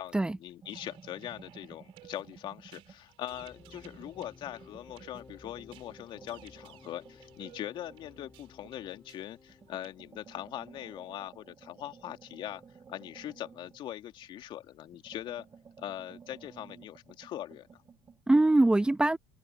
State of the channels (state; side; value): normal; both; correlation 0.85